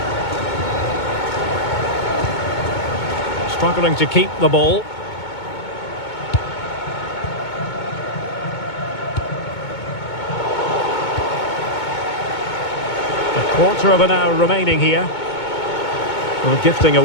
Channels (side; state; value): right; late; 2.2 ms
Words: Struggling to keep the ball. A quarter of an hour remaining here. Well, gifting